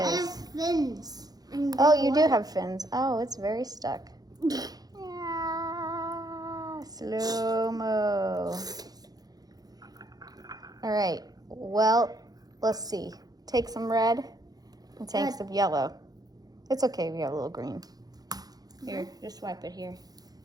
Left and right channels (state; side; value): late; left; 0.19 ms